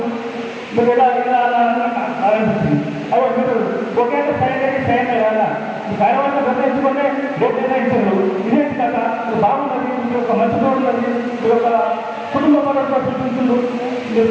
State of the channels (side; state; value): both; identical; correlation 1.00